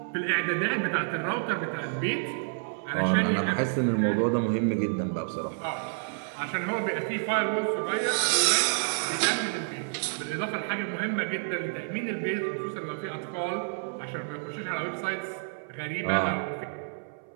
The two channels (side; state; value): left; silent; 59 dB below the other